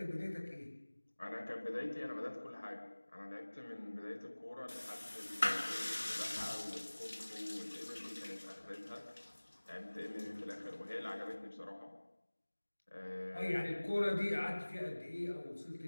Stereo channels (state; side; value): inverted; both; correlation -1.00